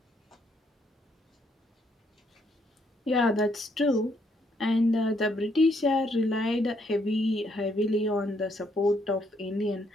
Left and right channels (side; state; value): both; normal; correlation 0.72